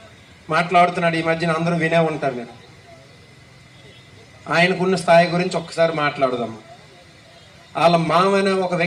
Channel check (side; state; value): both; identical; correlation 1.00